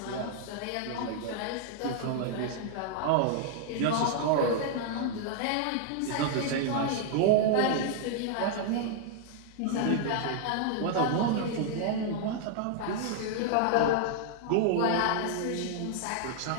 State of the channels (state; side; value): different; both; correlation -0.01